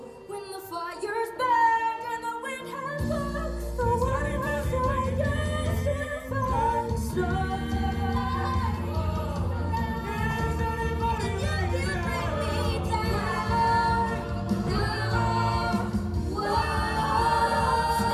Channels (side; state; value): both; identical; correlation 1.00